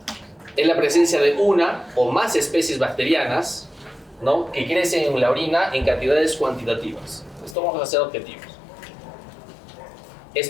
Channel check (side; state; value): right; drops out; at 7.6 s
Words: Es la presencia de una o más especies bacterianas, ¿no?, que crecen en la orina en cantidades cuantitativas. Esto vamos a hacer objetivos.